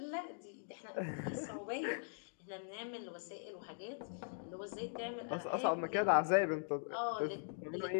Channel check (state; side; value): silent; right; digital silence